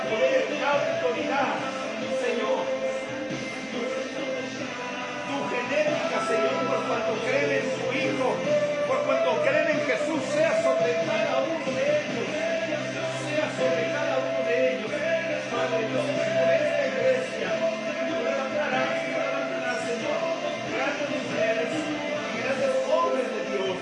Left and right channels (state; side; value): identical; both; correlation 1.00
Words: poder, da autoridad. Señor, genética, Señor, por cuanto creen en su Hijo, por cuanto creen en Jesús, sea sobre cada uno de ellos, sea sobre cada uno de ellos. Padre Dios, por esta iglesia, levantarás, Señor, grandes mujeres, grandes hombres de Dios,